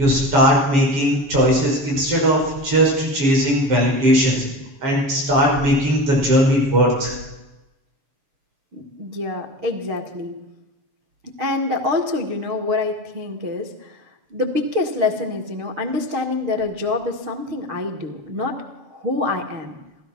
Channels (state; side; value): late; left; 6.5 ms